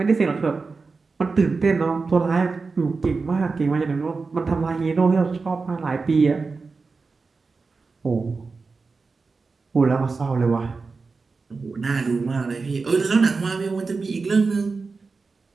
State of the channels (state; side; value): quieter; left; 4.3 dB